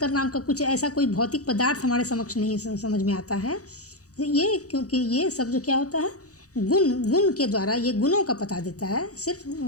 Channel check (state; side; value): late; right; 0.66 ms